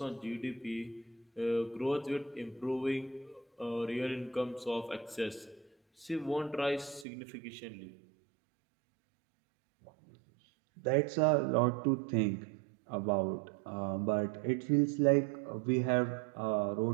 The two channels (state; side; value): drops out; left; at 7.1 s